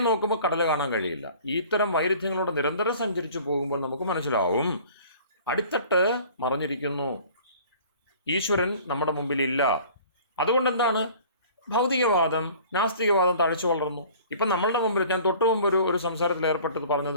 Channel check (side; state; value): both; inverted; correlation -0.48